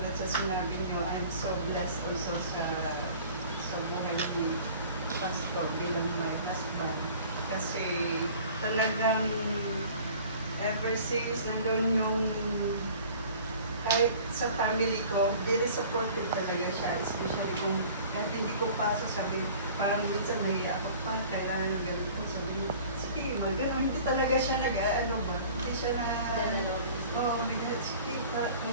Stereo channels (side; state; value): both; inverted; correlation -0.46